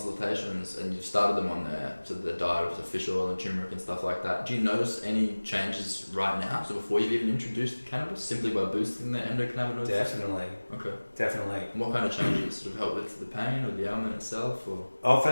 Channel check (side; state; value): both; inverted; correlation -1.00